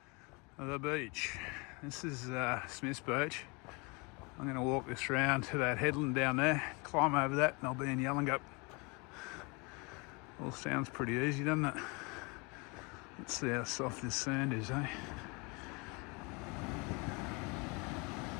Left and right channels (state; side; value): quieter; right; 29.3 dB